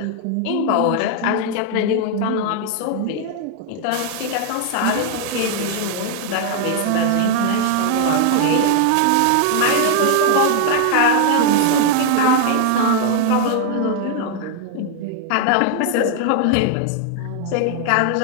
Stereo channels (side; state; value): both; different; correlation 0.00